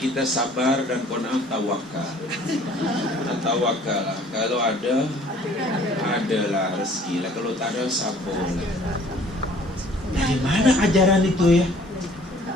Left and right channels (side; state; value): both; normal; correlation 0.54